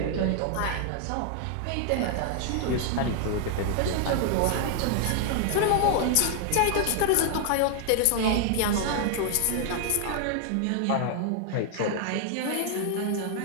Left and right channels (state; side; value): different; both; correlation 0.00